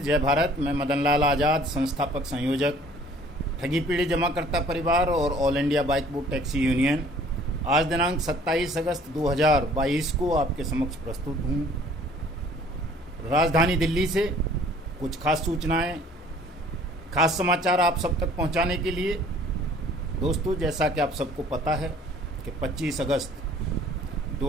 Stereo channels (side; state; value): both; normal; correlation 0.54